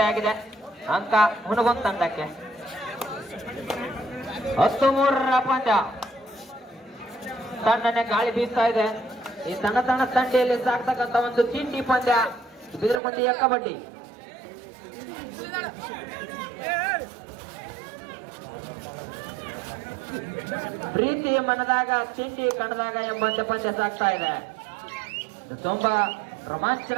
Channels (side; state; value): left; drops out; at 13.0 s